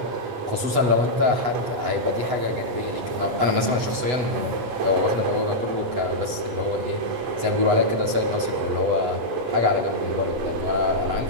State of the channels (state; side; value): late; left; 8.1 ms